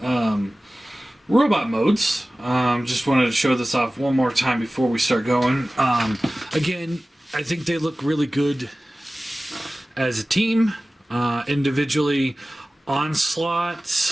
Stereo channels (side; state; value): both; normal; correlation 0.97